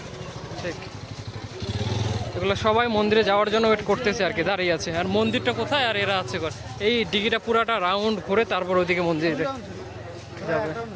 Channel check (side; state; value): both; identical; correlation 1.00